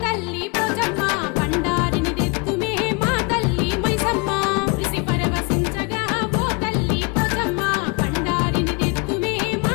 తల్లి పోచమ్మ బండారిని తెత్తుమే మా తల్లి మైసమ్మ మురిసి పరవశించగా ఓ తల్లి పోచమ్మ బండారిని తెత్తుమే మా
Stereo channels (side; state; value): right; quieter; 28.8 dB